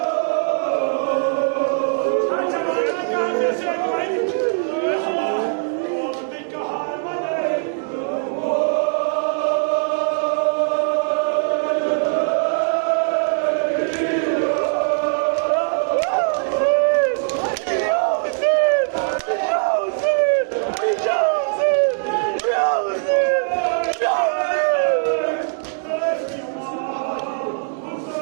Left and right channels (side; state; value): left; silent; digital silence